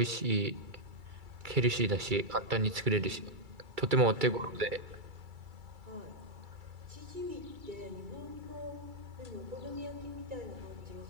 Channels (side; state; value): left; late; 2.3 ms